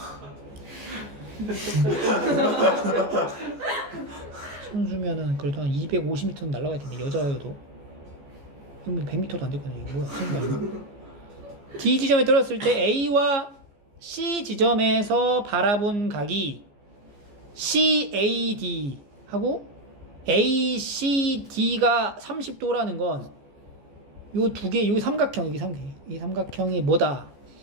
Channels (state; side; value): late; left; 14 ms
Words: 선수면은 그래도 한 250m는 날아갈 텐데 여자여도 그러면 100m도 안 됐거든요. 이거 뭐야? 선수 아니야? D 지점에 떨어졌을 때 A와 C 지점에서 바라본 각이 CAD 하고 ACD가 30도라는 건 요 두 개, 요 삼각형, 여기 삼각형, 이 삼각형이 뭐다?